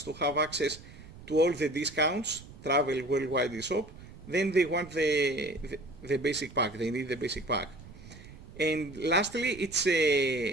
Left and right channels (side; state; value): right; noise; rumble, 18 dB below the sound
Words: to have access to all the discounts, travel, worldwide eShop, then they want the basic pack. They need the basic pack. And lastly, it's